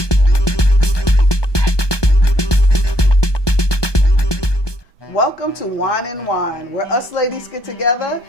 Welcome to Wine and Whine, where us ladies get together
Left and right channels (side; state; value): right; late; 1.2 ms